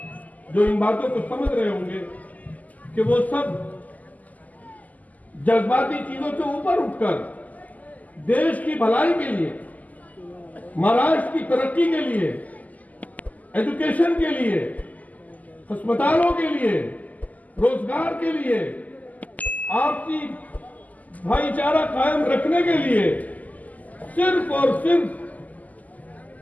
जो इन बातों को समझ रहे होंगे कि वो सब जज्बाती चीजों से ऊपर उठकर देश की भलाई के लिए, महाराष्ट्र की तरक्की के लिए, एजुकेशन के लिए, अस्पतालों के लिए, रोजगार के लिए, आपसी भाईचारा कायम रखने के लिए सिर्फ और सिर्फ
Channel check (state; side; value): late; right; 0.078 ms